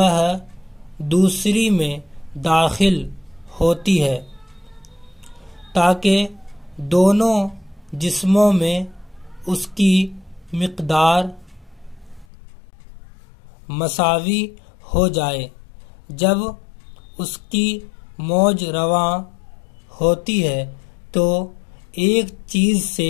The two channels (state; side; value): drops out; right; at 12.2 s